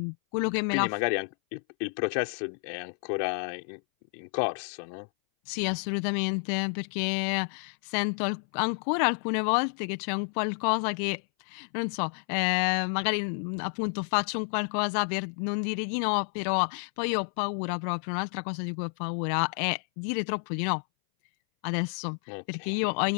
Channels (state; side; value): silent; right; 58 dB below the other